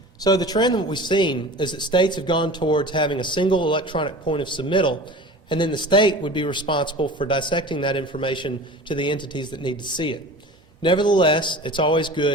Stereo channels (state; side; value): normal; both; correlation 0.37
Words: So the trend that we've seen is that states have gone towards having a single electronic point of submittal, and then the state would be responsible for dissecting that information to the entities that need to see it. Nevertheless, it's always